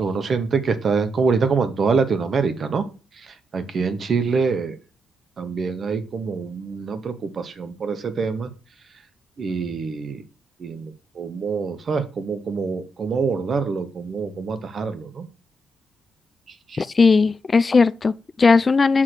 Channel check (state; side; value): normal; both; correlation 0.82